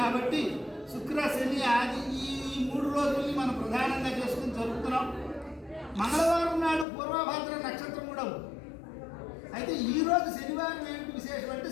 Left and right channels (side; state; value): right; drops out; at 6.9 s